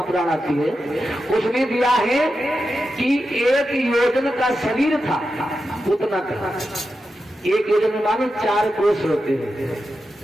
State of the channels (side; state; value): both; normal; correlation 0.89